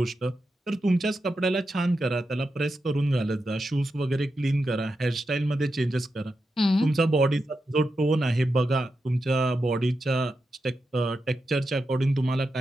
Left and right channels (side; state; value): both; normal; correlation 0.88